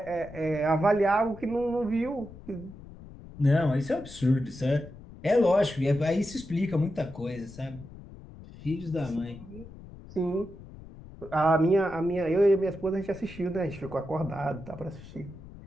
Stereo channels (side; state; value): left; noise; rumble, 17 dB below the sound